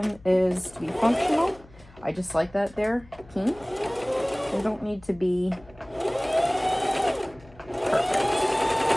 is to be functional. I just like that they're pink. They don't need to be perfect.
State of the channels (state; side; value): noise; left; hum, 24 dB below the sound